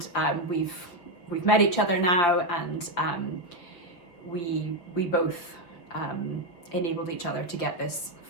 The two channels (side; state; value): right; late; 5.8 ms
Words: we've met each other now, and we both enabled each other to get this